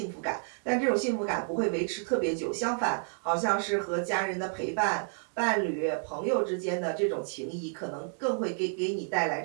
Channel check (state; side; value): silent; left; 57 dB below the other